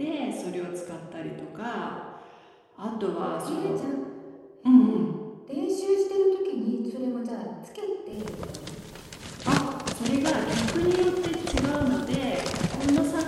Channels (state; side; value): identical; both; correlation 1.00